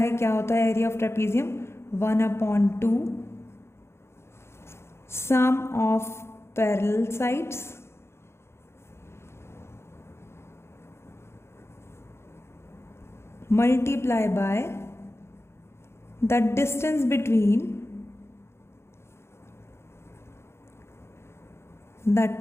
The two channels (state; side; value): late; right; 0.12 ms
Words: क्या होता है area of trapezium, 1/2 sum of parallel sides multiply by the distance between the